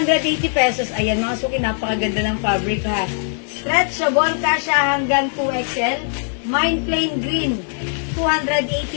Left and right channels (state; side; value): silent; right; 65 dB below the other